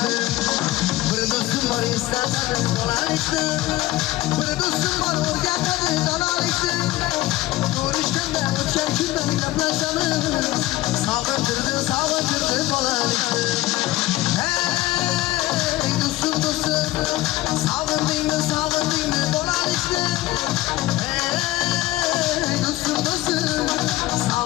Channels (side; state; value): right; quieter; 16.8 dB